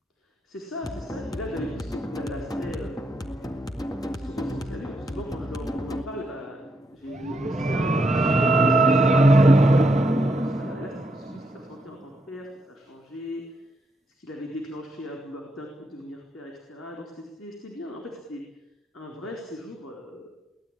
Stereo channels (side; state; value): both; normal; correlation 0.79